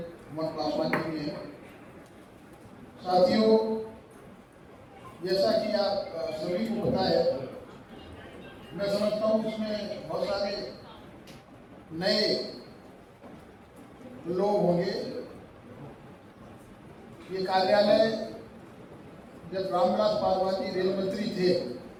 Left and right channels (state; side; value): identical; both; correlation 1.00